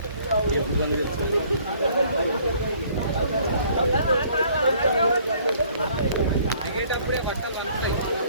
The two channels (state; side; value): inverted; both; correlation -0.59